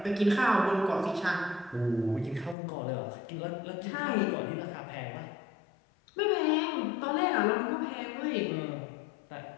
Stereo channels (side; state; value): right; drops out; at 2.6 s